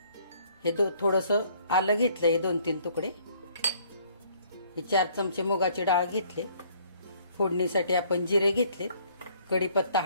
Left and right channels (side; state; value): both; inverted; correlation -0.61